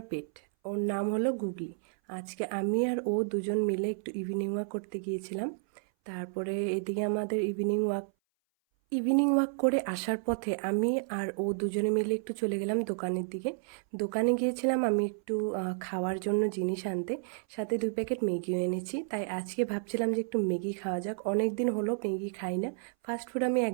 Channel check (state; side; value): silent; left; 57 dB below the other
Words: পেট। ওর নাম হলো গুগলি। আজকে আমি আর ও দুজন মিলে একটু ইভিনিং ওয়াক করতে গিয়েছিলাম। তারপরে এদিকে আমাদের ইভিনিং ওয়াক করে আসার পথে আমি আর ও দুজনে মিলে একটু চলে গেলাম দোকানের দিকে। দোকানে গিয়েছিলাম আমি একটু খাওয়ার জন্য জিনিস আনতে, সাথে 2 প্যাকেট ম্যাগিও এনেছি। তাই আজকে ভাবছিলাম যে একটু ম্যাগি খাওয়া যাক, অনেক দিন হলো ম্যাগি খাই না। ফাস্ট ফুড আমি